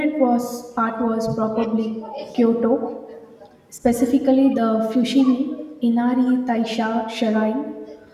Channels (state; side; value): identical; both; correlation 1.00